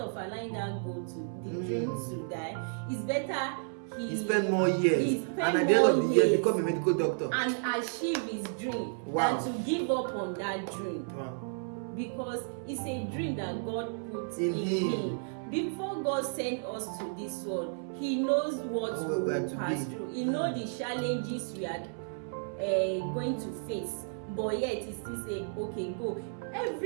allowing that goal to the dream to die, it's better he spend more years and at the end of the year become a medical doctor and achieve his dream than to give up on that dream. Because it's a dream that God put in him. Before God sent us to this world, He knows what we will pass through. He knows the challenges we are going to face. But yet He still say, okay, go.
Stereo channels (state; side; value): silent; left; 56 dB below the other